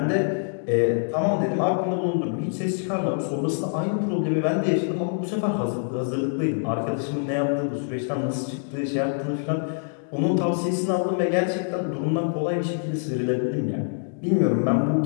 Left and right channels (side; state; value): right; silent; digital silence